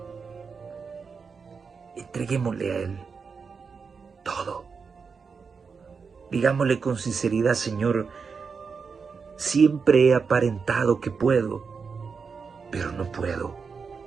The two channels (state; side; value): quieter; left; 5.4 dB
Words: Entreguémosle a Él todo. Digámosle con sinceridad, Señor, siempre he aparentado que puedo, pero no puedo.